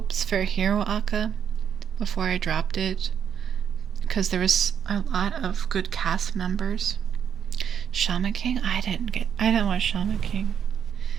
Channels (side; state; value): left; quieter; 8.2 dB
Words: for Hero Aka before I dropped it because there was a lot of good cast members. Shaman King, I didn't watch Shaman King.